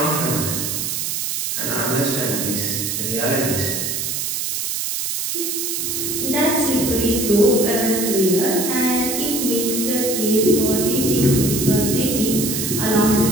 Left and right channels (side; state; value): right; noise; hiss, 2 dB below the sound